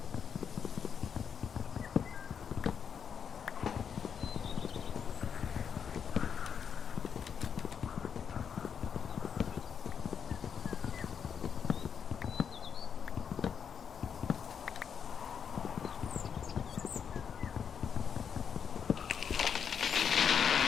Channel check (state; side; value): quieter; right; 7.2 dB